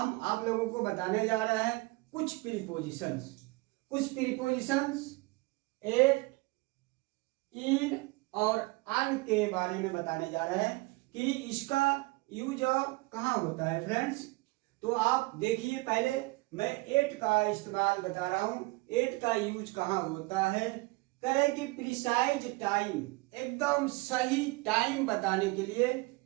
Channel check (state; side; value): quieter; left; 23.8 dB